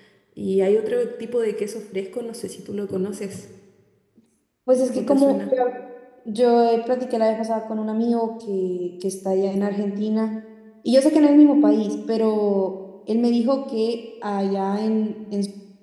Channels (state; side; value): identical; both; correlation 1.00